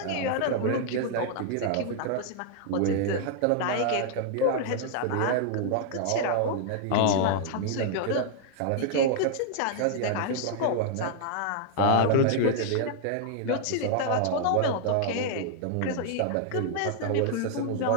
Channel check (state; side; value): different; both; correlation -0.01